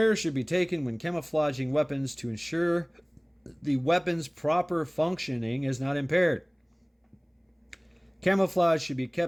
should be taken when camouflaging weapons to ensure the weapon's proper functioning is not impaired. Camouflage should be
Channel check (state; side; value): identical; both; correlation 1.00